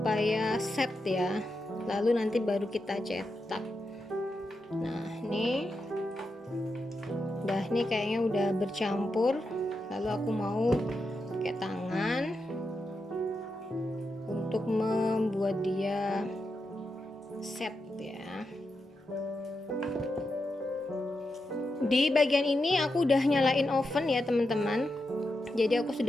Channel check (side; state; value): both; normal; correlation 0.87